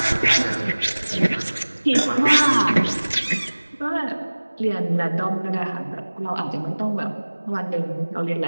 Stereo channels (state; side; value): inverted; both; correlation -1.00